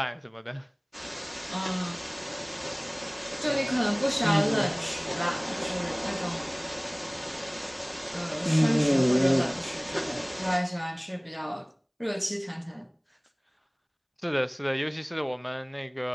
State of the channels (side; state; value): both; identical; correlation 1.00